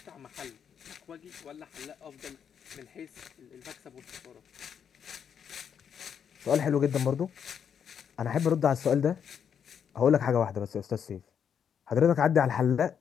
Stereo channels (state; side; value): quieter; right; 7.8 dB